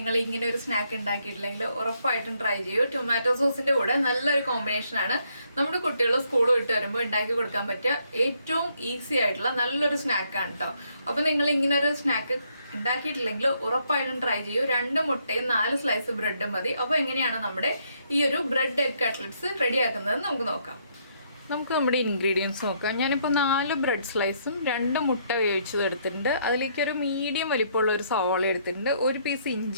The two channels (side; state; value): both; inverted; correlation -0.71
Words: ഇങ്ങനെ ഒരു സ്നാക്ക് ഉണ്ടാക്കിയിട്ടില്ലെങ്കിൽ ഉറപ്പായിട്ടും ട്രൈ ചെയ്യൂ. ടൊമാറ്റോ സോസിന്റെ കൂടെ നല്ലൊരു കോമ്പിനേഷനാണ്. നമ്മുടെ കുട്ടികൾ സ്കൂൾ വിട്ട് വരുമ്പോൾ ഉണ്ടാക്കി കൊടുക്കാൻ പറ്റിയ ഏറ്റവും ഈസി ആയിട്ടുള്ള നല്ലൊരു സ്നാക്കാണ് കേട്ടോ. അപ്പോൾ നിങ്ങൾ ഇങ്ങനെ ഒരു സ്നാക്ക് ഉണ്ടാക്കിയിട്ടില്ലെങ്കിൽ ഉറപ്പായിട്ടും ട്രൈ ചെയ്യൂ. 2 മുട്ടയും 4 സ്ലൈസ് ബ്രെഡും മതി. അപ്പോൾ എങ്ങനെയാണ് നമ്മുടെ ഈ ഒരു ബ്രെഡ് എഗ് കട്ട്ലറ്റ്സ് റെഡിയാക്കുന്നത് നമുക്ക് നോക്കാം. നമുക്ക് നമ്മുടെ ഇൻഗ്രീഡിയൻസ് നോക്കാം. ഞാനിപ്പോൾ 4 ബ്രെഡ് സ്ലൈസും 2 മുട്ട വേവിച്ചത് എടുത്തിട്ടുണ്ട്. അതിലേക്ക് ഒരു മീഡിയം വലിപ്പമുള്ള ഒരു സവാള എടുത്തിട്ടുണ്ട്, ഒരു പീസ്